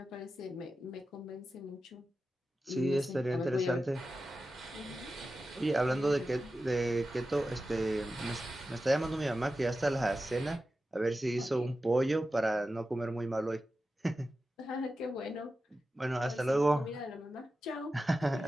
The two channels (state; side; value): normal; both; correlation 0.92